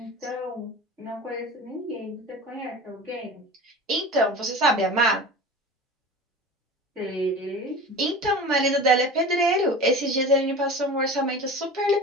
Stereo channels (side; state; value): both; normal; correlation 0.35